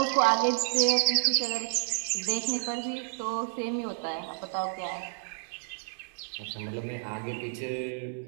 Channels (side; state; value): left; silent; 58 dB below the other